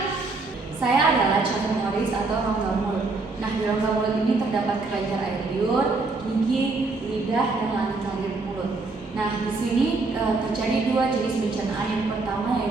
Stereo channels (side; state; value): left; quieter; 3.6 dB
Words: Saya adalah calon Morris atau rongga mulut. Nah, di rongga mulut ini terdapat kelenjar air liur, gigi, lidah, dan langit-langit mulut. Nah, di sini terjadi 2 jenis pencernaan. Yang pertama